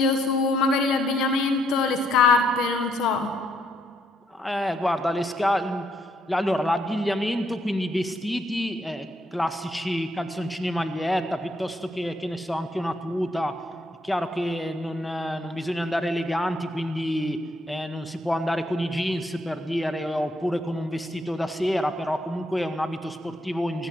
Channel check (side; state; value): both; normal; correlation 0.73